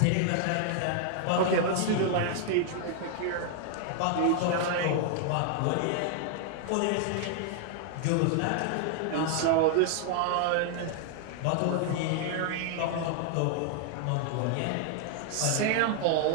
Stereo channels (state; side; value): different; both; correlation 0.00